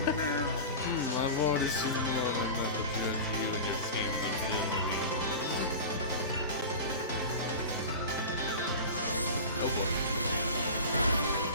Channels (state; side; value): inverted; both; correlation -0.30